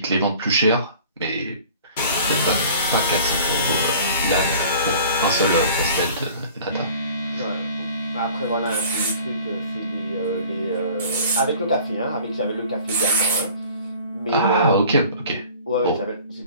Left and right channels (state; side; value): inverted; both; correlation -0.47